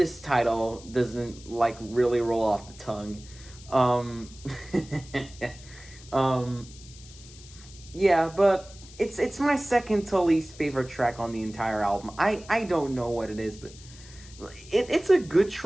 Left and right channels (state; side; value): noise; left; hiss, 20 dB below the sound